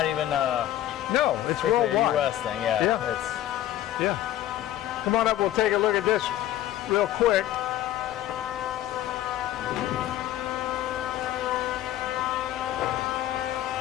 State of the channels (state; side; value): quieter; right; 13.0 dB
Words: even no, it's strictly a worldwide. US thing. Yeah. Yeah. It's Yeah. Come on up, we'll take a look at this real quick.